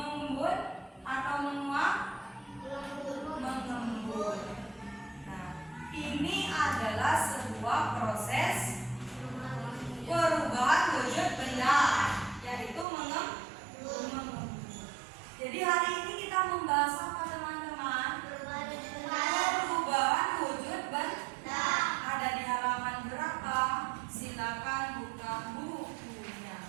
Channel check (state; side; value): drops out; left; at 12.9 s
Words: atau menguap? Mengembut. Nah, ini membahas apa teman-teman? Perubahan wujud benda. Ada di halaman berapa? Silakan buka bukunya.